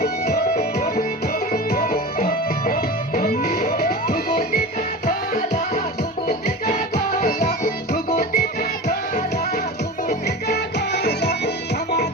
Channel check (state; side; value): normal; both; correlation 0.31